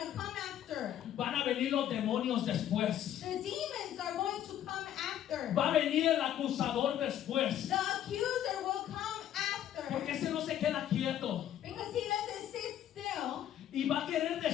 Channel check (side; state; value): right; quieter; 11.1 dB